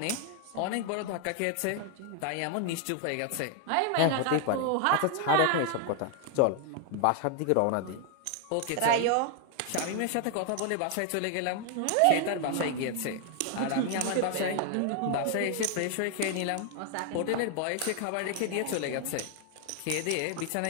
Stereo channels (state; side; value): different; both; correlation 0.00